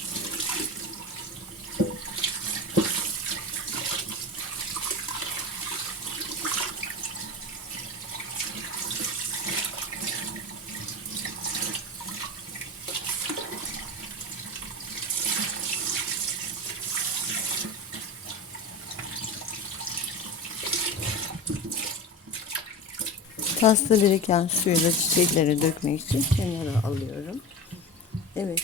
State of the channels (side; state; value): both; normal; correlation 0.27